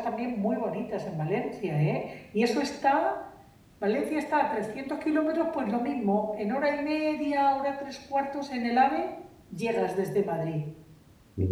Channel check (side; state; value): both; identical; correlation 1.00